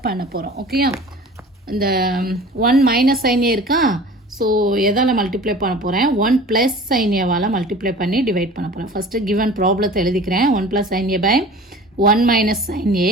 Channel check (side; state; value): both; normal; correlation 0.42